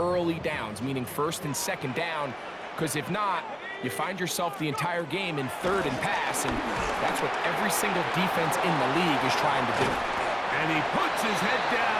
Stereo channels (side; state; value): both; identical; correlation 1.00